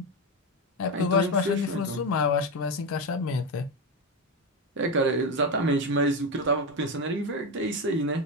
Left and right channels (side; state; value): both; normal; correlation 0.13